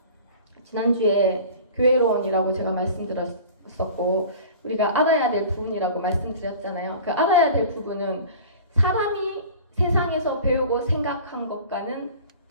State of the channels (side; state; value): both; inverted; correlation -0.41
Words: 지난주에 교회론이라고 제가 말씀드렸었고 우리가 알아야 될 부분이라고 말씀드렸잖아요. 그 알아야 될 부분은 사람이 세상에서 배우고 생각한 것과는